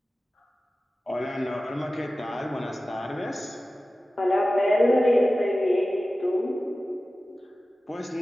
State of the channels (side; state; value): both; normal; correlation 0.96